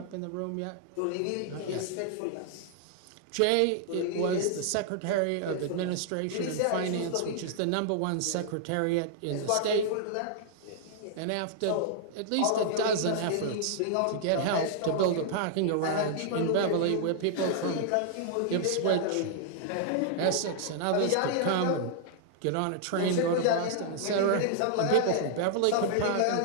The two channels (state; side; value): different; both; correlation -0.01